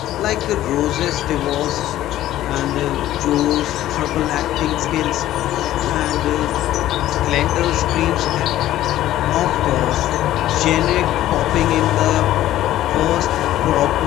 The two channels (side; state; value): right; quieter; 13.8 dB